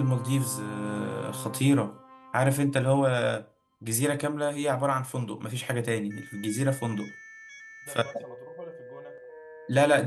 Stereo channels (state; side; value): identical; both; correlation 1.00